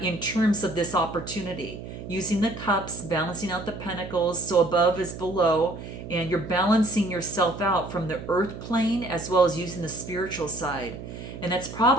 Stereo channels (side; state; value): right; noise; hum, 11 dB below the sound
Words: in terms of this opportunity. Using the cups, balancing out the pentacles, so above is below, and you're balancing yourself out from the earth plane as well as using the spiritual side. And that's